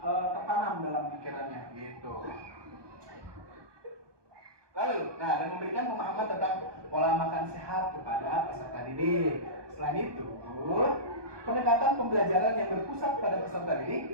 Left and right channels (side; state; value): left; late; 1.2 ms